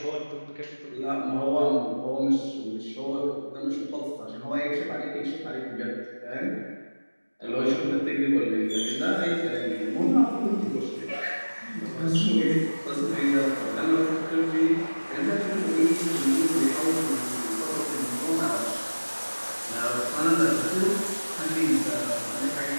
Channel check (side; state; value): both; inverted; correlation -1.00